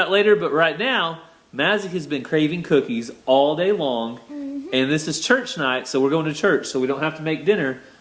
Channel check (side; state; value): both; identical; correlation 1.00